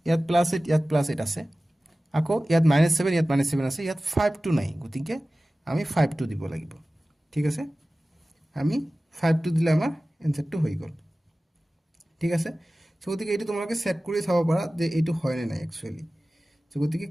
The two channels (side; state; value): both; normal; correlation 0.96